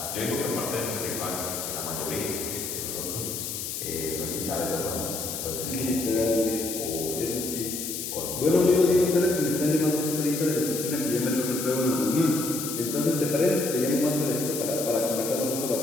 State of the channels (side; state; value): left; noise; hiss, 5 dB below the sound